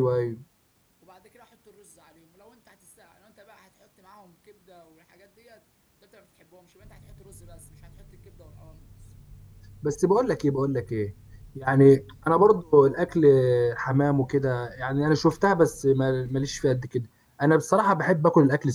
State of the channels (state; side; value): identical; both; correlation 1.00